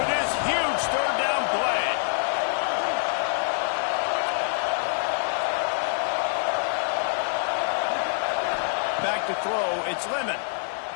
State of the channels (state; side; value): silent; right; digital silence